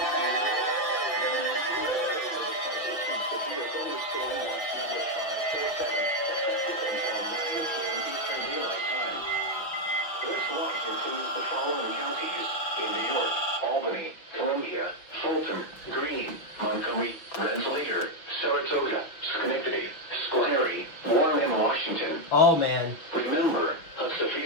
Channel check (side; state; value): right; late; 6.1 ms